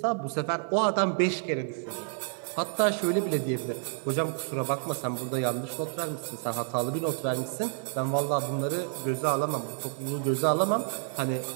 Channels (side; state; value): left; silent; 58 dB below the other